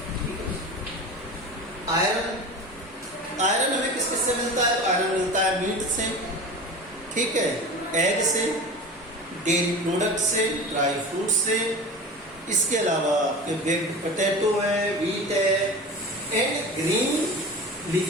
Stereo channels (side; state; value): both; normal; correlation 0.33